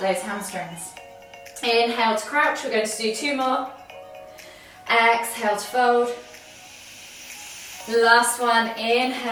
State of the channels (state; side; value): identical; both; correlation 1.00